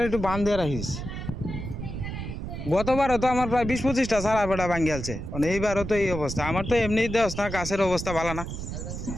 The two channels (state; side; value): noise; right; rumble, 6 dB below the sound